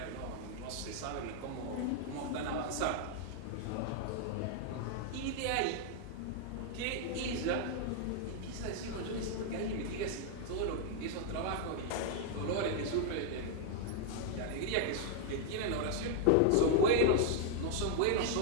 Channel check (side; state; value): both; different; correlation 0.00